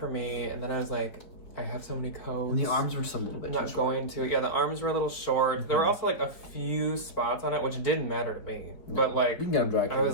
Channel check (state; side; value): late; right; 4.8 ms